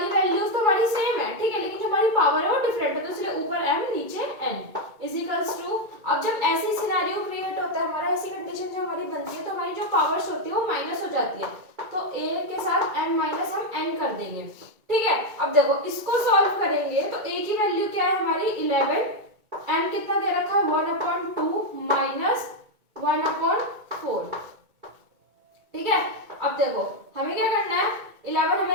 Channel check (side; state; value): left; late; 2.2 ms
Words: वैल्यूज तो हमारी सेम है, ठीक है, लेकिन जो हमारी पावर है वो डिफरेंट है, तो इसलिए ऊपर m नीचे n इज इक्वल्स टू। अब जब ऐसी सिनेरियो क्रिएट होता है हमारा, ऐसी कंडीशन जो हमारी बनती है, तो हमारी जो पावर्स होती है वो माइनस हो जाती है, तो a के साथ m माइनस हम n कर देंगे। ठीक है, अब देखो इसको सॉल्व करेंगे तो a की वैल्यू क्या है हमारी? 11, m कितना दे रखा है? 1/2 माइनस 1/4। ठीक है, अब देखो हमें क्या करना है? 11